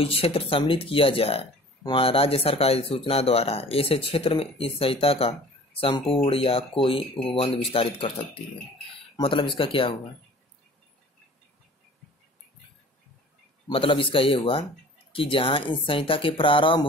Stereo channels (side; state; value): both; normal; correlation 0.46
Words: क्षेत्र सम्मिलित किया जाए वहां राज्य सरकार सूचना द्वारा ऐसे क्षेत्र में इस संहिता का संपूर्ण या कोई उपबंध विस्तारित कर सकती है। मतलब इसका क्या हुआ, मतलब इसका ये हुआ कि जहां इस संहिता के प्रारंभ